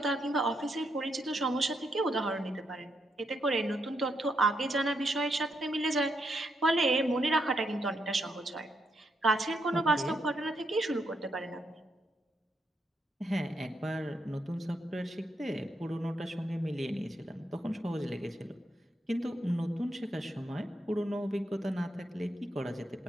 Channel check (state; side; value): normal; both; correlation 0.79